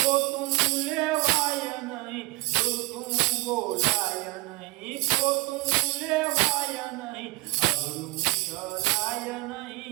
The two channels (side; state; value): left; quieter; 22.7 dB